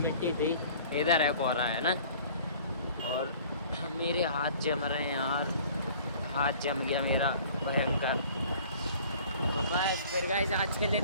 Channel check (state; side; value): inverted; both; correlation -0.50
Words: थी, इधर है कोहरा, है ना। और मेरे हाथ जम रहे हैं यार, हाथ जम गया मेरा भयंकर। तो बस फिर गाइस आज के लिए